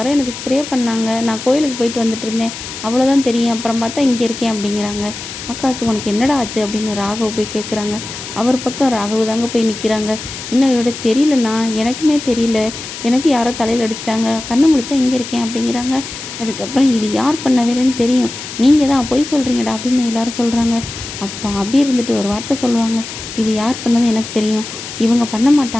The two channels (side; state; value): left; noise; hiss, 10 dB below the sound